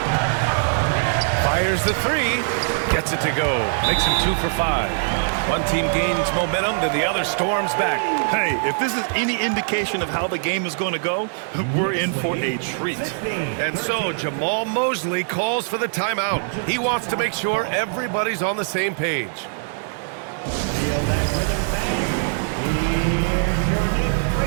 Fires the 3. Gets it to go. Makes him 2 for 5. One team gains momentum, then the other storms back. Hey, if this is any indication of how the game is going to go, we're in for a treat. And so Jamal Mosley calls for the timeout. He wants to make sure everybody's on the same page. Feel that rhythm, fans. Here's your Knicks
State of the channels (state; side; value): silent; left; digital silence